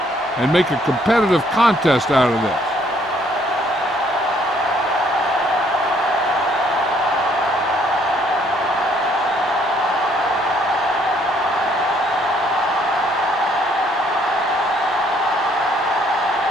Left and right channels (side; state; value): both; normal; correlation 0.65